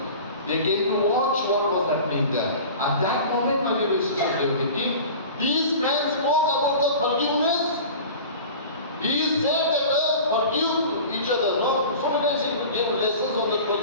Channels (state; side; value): inverted; both; correlation -0.38